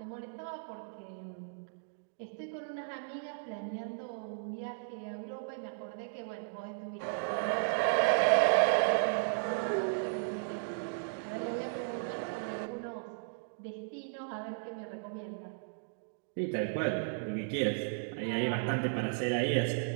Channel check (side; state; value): left; silent; digital silence